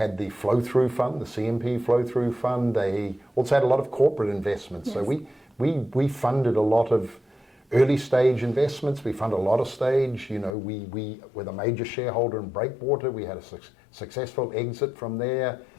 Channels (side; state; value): right; drops out; at 10.6 s